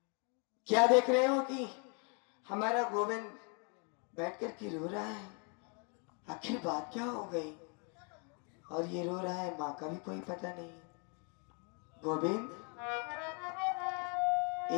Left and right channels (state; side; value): quieter; right; 37.0 dB